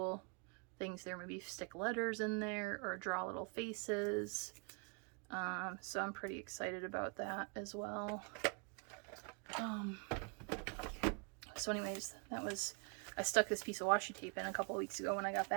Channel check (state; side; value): quieter; left; 35.3 dB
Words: things there. Maybe stick letters in there or draw little faces. So I'm pretty excited about that as well. So anyways, I stuck this piece of washi tape in a couple weeks ago when I got